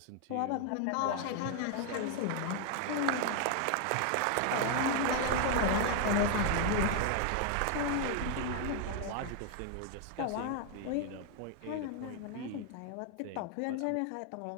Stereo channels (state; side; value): different; both; correlation 0.01